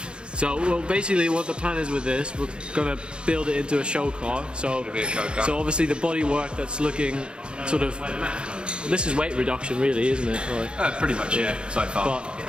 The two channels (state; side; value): late; left; 0.053 ms